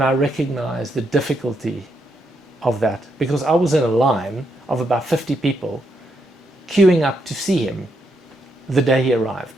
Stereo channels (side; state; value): both; normal; correlation 0.79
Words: I recognize the difficulty of that, because I was in a line of about 50 people queuing up to see him the day he